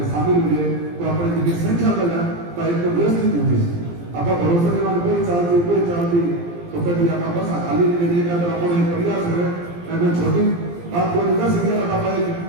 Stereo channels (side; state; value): left; late; 17 ms